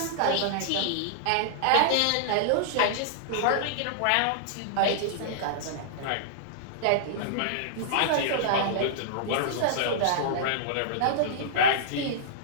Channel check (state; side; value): different; both; correlation -0.02